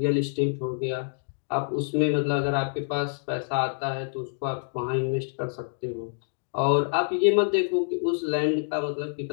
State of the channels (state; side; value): silent; right; digital silence